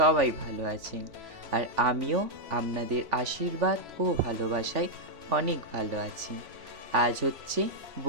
ভালো আছেন, আর আমিও আপনাদের আশীর্বাদ ও ভালোবাসায় অনেক ভালো আছি। আজ হচ্ছে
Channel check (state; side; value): late; left; 3.5 ms